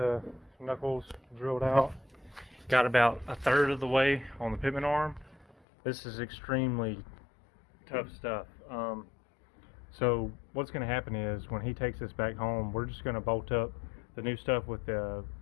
knuckles drilled out. Got about 1/3 of the way on the pitman arm. This is extremely tough stuff. So what's going to happen is when he takes this back home, we're just going to bolt up the new stuff with the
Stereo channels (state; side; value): drops out; right; at 5.6 s